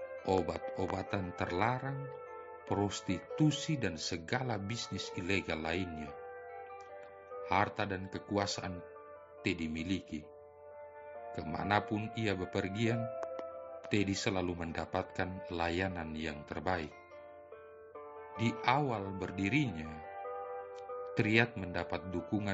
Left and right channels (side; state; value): both; identical; correlation 1.00